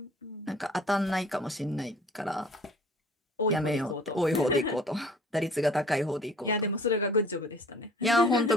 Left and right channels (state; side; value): normal; both; correlation 0.51